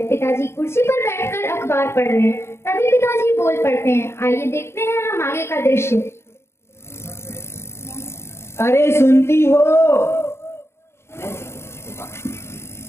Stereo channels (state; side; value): late; right; 0.12 ms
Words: पिताजी कुर्सी पर बैठकर अखबार पढ़ रहे हैं। तभी पिताजी बोल पड़ते हैं। आइए देखते हैं हम आगे का दृश्य। अरे सुनती हो?